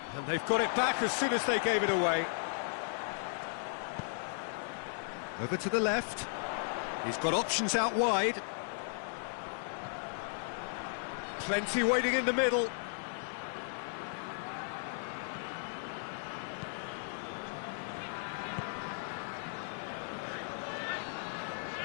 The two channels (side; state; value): right; silent; digital silence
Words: And they've got it back as soon as they gave it away. Over to the left. He's got options out wide. Plenty waiting in the middle.